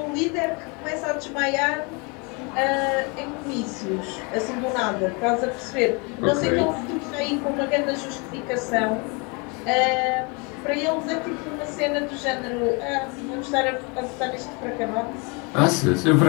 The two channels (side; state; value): right; quieter; 31.1 dB